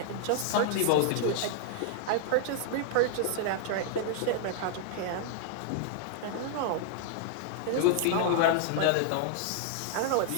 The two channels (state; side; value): different; both; correlation -0.01